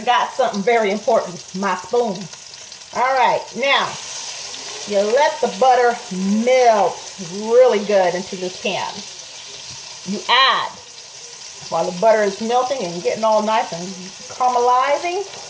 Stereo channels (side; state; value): both; identical; correlation 1.00